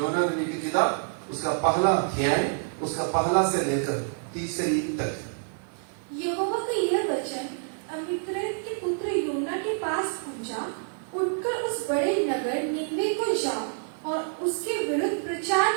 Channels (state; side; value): silent; left; digital silence